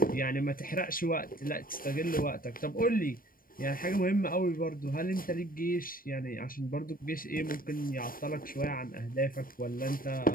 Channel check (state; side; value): late; right; 0.41 ms